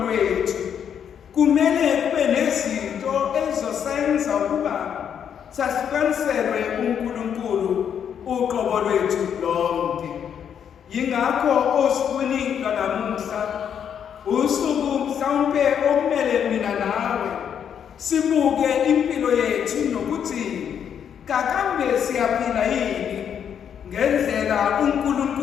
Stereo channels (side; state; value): right; quieter; 8.3 dB